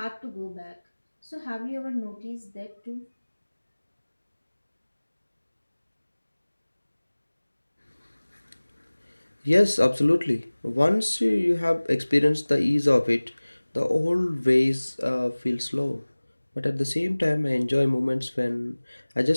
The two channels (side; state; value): both; inverted; correlation -1.00